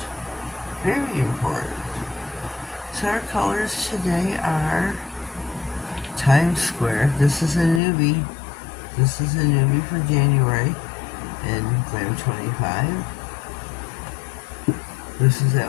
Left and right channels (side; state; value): right; drops out; at 7.8 s